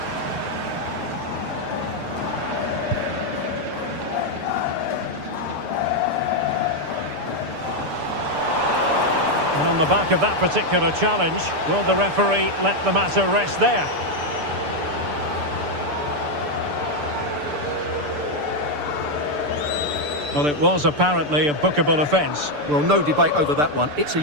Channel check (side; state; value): left; late; 6.8 ms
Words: And on the back of that particular challenge, will the referee let the matter rest there? Well, it was apparently a bookable offence. Well, no debate over that one. It's a